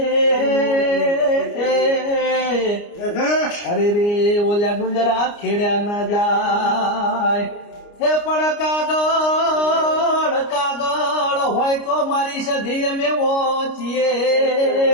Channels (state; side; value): late; right; 29 ms